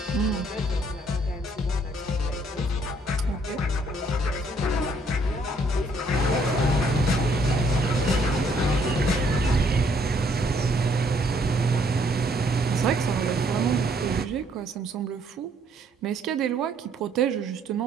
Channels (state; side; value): normal; both; correlation 0.66